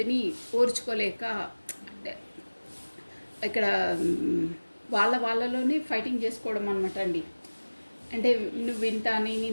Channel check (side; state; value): both; inverted; correlation -1.00